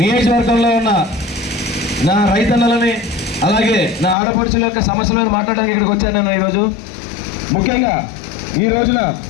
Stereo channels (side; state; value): right; drops out; at 4.2 s